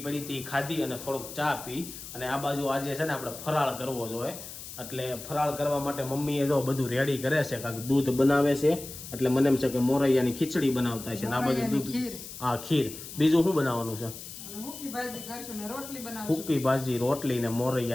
પડી હતી ખાધી અને થોડોક ચા પી, અને આ બાજુ આજે છે ને આપણે ફરાળ કરવો જોઈએ। એટલે ફરાળ કરવા માટે મમ્મીએ જો બધું રેડી કરે છે, કાંઈક દૂધ બનાવે છે, એટલે મને એમ છે કે મોરૈયાની ખીચડી બનાવતા છે ને આ બાજુ દૂધ, હા ખીર, બીજું શું બનાવવાનું છે? સૂકી ભાજી, રોટલી ને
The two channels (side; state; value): left; noise; hiss, 12 dB below the sound